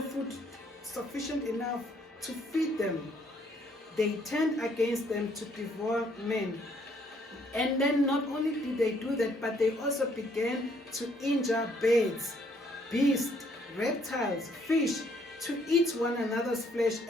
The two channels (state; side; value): normal; both; correlation 0.67